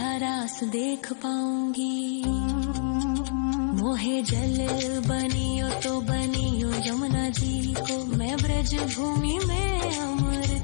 रास देख पाऊंगी। मोहे जल बनियो तो बनियो यमुना जी को, मैं ब्रज भूमि में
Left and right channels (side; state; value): right; silent; 60 dB below the other